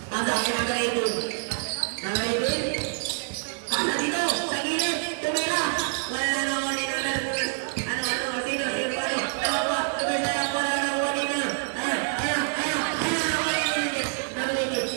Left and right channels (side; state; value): left; silent; digital silence